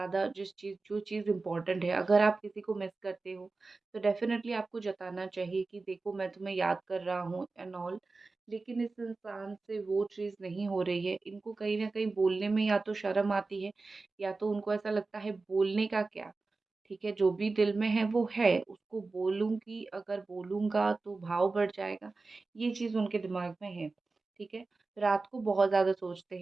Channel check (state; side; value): quieter; left; 3.7 dB